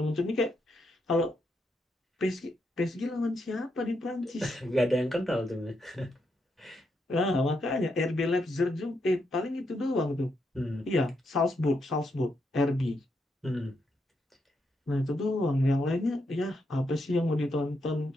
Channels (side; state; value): both; normal; correlation 0.80